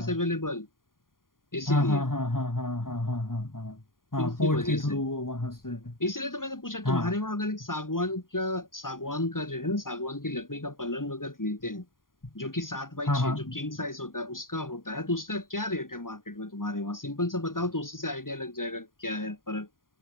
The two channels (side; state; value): right; late; 0.91 ms